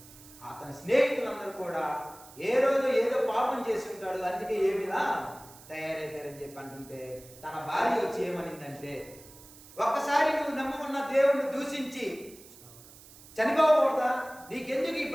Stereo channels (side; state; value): right; noise; hiss, 20 dB below the sound